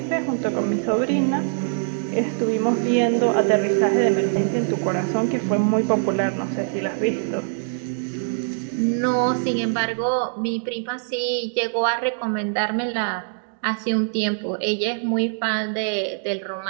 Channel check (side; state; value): left; silent; digital silence